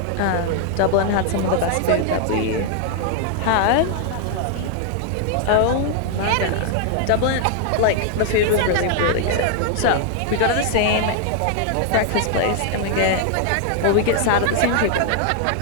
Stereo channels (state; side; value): different; both; correlation 0.00